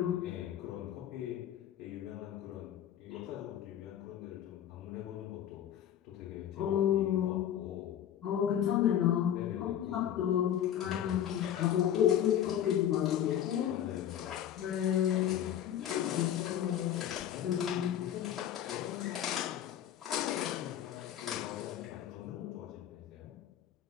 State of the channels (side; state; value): right; quieter; 10.5 dB